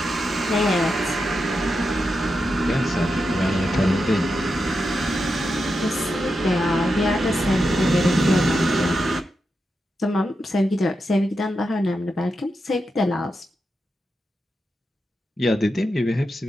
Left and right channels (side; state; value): both; normal; correlation 0.87